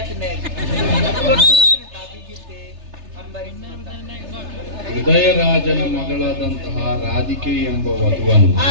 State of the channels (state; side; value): late; left; 3.3 ms